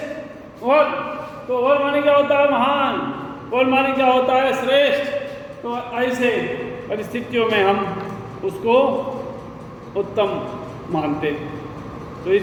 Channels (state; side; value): identical; both; correlation 1.00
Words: और तो और माने क्या होता है महान, और माने क्या होता है श्रेष्ठ। तो ऐसे परिस्थितियों में हम उसको उत्तम मानते। तो इस